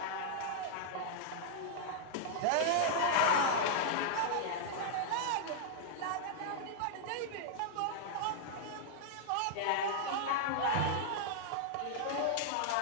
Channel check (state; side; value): different; both; correlation -0.01